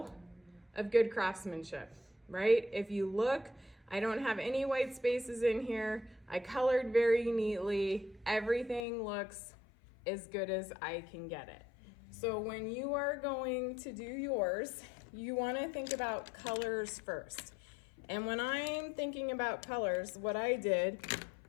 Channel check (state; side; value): drops out; right; at 8.8 s